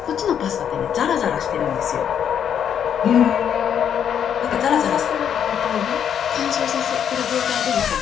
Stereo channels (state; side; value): quieter; right; 8.7 dB